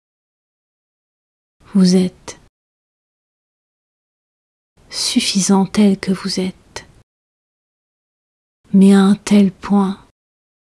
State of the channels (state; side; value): identical; both; correlation 1.00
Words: Vous êtes suffisant tel que vous êtes, mais à un tel point